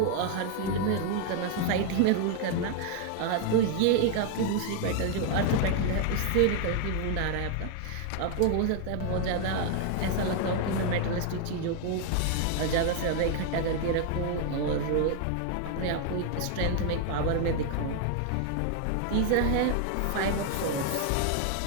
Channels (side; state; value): both; different; correlation 0.00